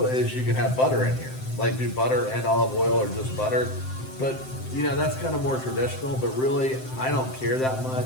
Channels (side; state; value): right; late; 7.7 ms